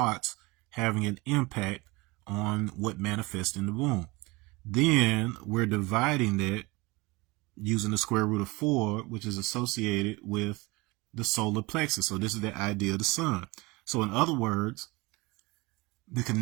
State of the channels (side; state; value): left; quieter; 23.9 dB